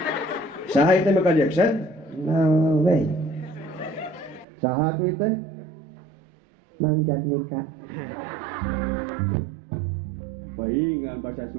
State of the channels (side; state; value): left; drops out; at 4.5 s